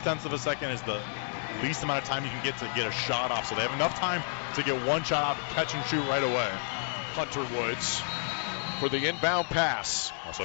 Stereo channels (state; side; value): silent; right; digital silence